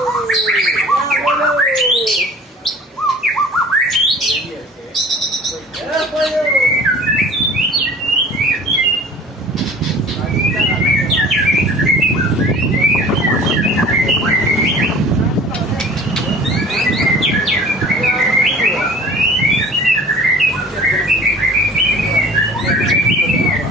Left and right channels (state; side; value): normal; both; correlation 0.45